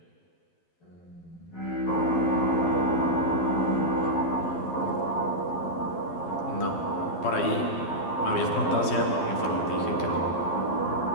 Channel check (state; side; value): late; right; 12 ms